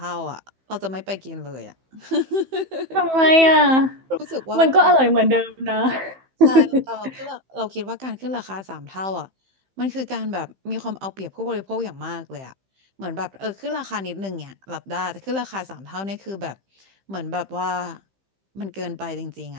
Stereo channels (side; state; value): left; late; 15 ms